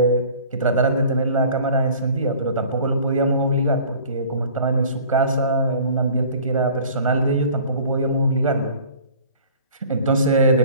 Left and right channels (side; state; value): both; inverted; correlation -0.48